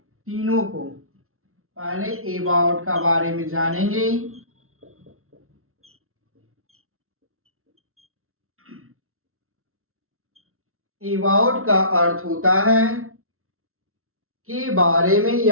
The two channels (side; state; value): left; late; 0.62 ms